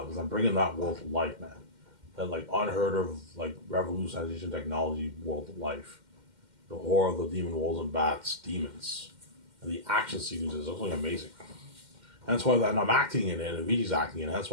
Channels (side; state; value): left; late; 2.1 ms